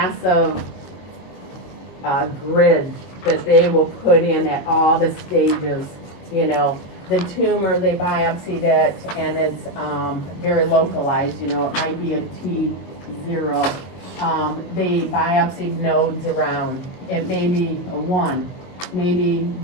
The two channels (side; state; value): right; late; 22 ms